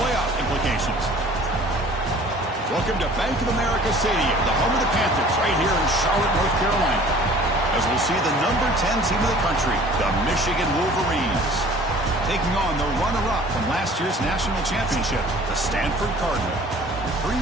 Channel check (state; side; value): normal; both; correlation 0.49